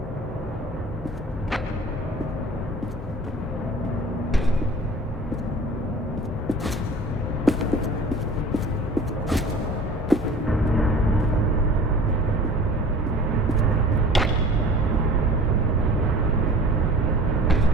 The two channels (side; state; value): both; normal; correlation 0.43